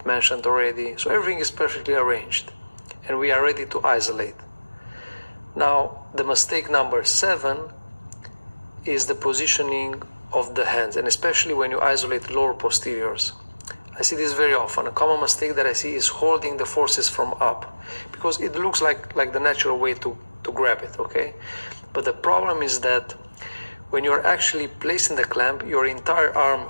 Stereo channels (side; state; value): both; inverted; correlation -1.00